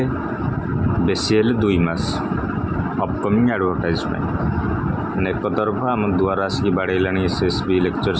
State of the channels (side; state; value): both; identical; correlation 1.00